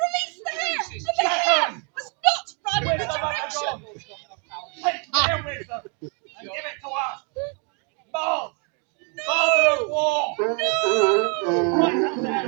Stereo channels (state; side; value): quieter; left; 36.8 dB